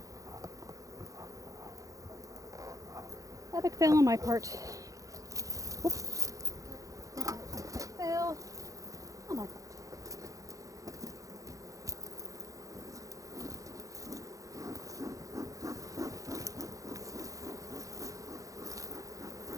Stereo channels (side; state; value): left; late; 0.16 ms